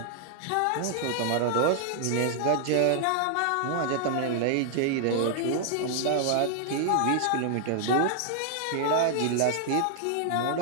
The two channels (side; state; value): both; different; correlation 0.00